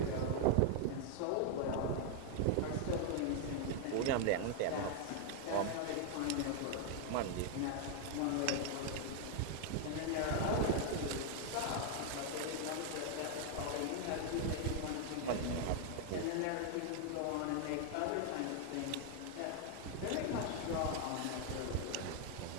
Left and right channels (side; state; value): both; different; correlation 0.00